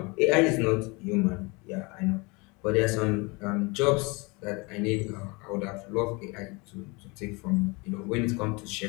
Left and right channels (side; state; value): right; quieter; 27.3 dB